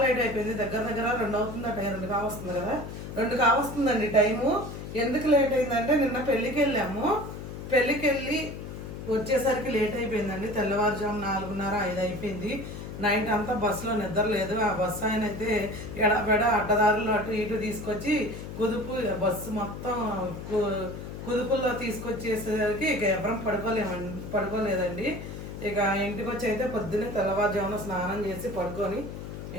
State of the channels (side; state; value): left; noise; hum, 9 dB below the sound